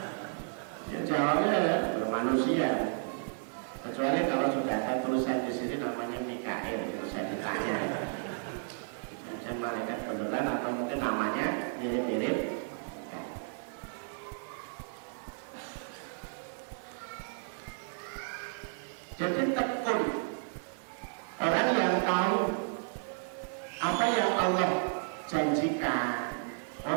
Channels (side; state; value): left; silent; digital silence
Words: Ya jawabnya bermanusia. Kecuali kalau sudah ada tulisan di sini namanya Mikael, itu saya ditanya. Jadi malaikat beneran atau mungkin namanya mirip-mirip. Jadi tekun orang yang tahu apa yang Allah janjikan,